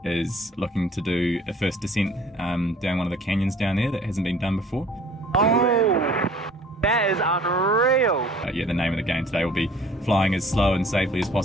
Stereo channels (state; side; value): normal; both; correlation 0.52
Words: is looking to do a first descent down one of the canyons down there that hasn't been done before. Oh, that is unreal. Yeah, the name of the game today will be flying as slow and safely as